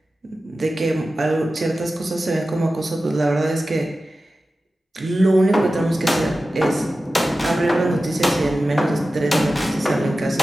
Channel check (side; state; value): both; normal; correlation 0.94